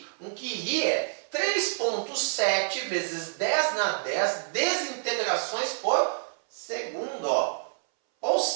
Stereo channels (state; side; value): silent; left; 59 dB below the other